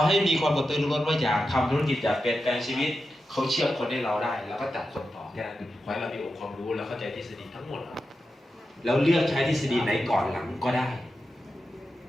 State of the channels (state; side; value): normal; both; correlation 0.90